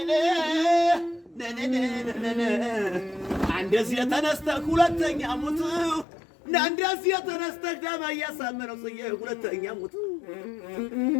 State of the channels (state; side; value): drops out; right; at 6.1 s